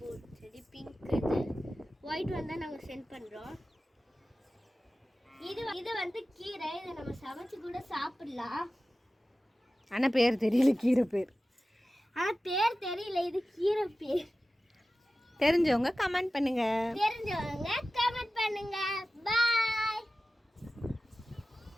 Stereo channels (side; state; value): both; normal; correlation 0.95